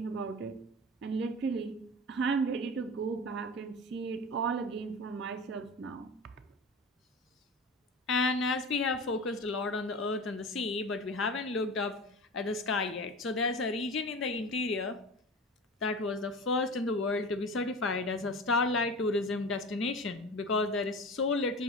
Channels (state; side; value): normal; both; correlation 0.32